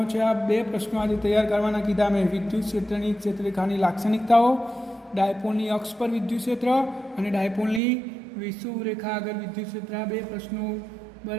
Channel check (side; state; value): left; drops out; at 7.8 s